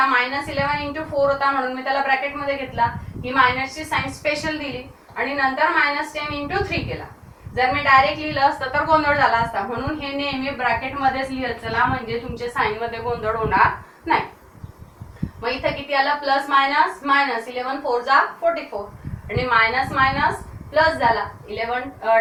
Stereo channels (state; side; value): identical; both; correlation 1.00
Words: -11 into 4 होता म्हणून मी त्याला ब्रॅकेट मध्ये घेतला, ही मायनसची साइन स्पेशल दिली आणि नंतर -10 इंटू 3 केला. जर मी डायरेक्ट लिहिलं असतं तर गोंधळ झाला असता, म्हणून हे नेहमी ब्रॅकेट मध्येच लिहत चला, म्हणजे तुमचे साइन मध्ये गोंधळ होणार नाही. मग इथे किती आलं, प्लस मायनस मायनस, 11 4 जा 44 आणि मायनस मायनस प्लस झाला, 11